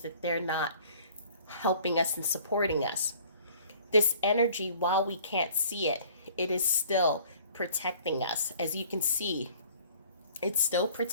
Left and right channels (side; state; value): both; inverted; correlation -0.52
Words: that they're not helping us and supporting us. This energy, while we can't see it, it is still protecting us. As you can see, it's still